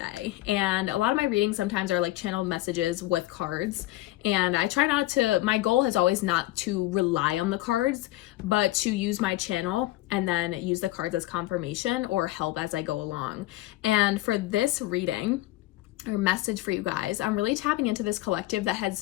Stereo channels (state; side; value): quieter; right; 17.2 dB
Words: And a lot of my readings sometimes are like channeled messages with cards, and I try not to, my goal has always not to rely on the cards, but to use my channel and then use the cards as confirmation or help as I go along. And for this reading, or message for you guys, I'm really tapping into this collective that